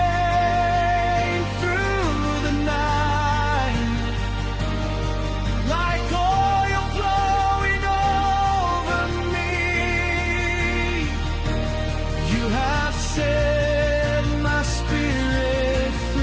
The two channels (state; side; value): identical; both; correlation 1.00